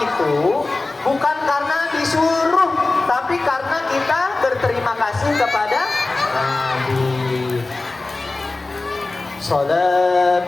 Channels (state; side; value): quieter; right; 3.3 dB